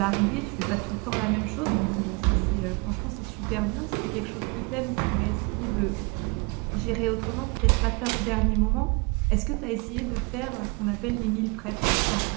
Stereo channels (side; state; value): left; quieter; 29.9 dB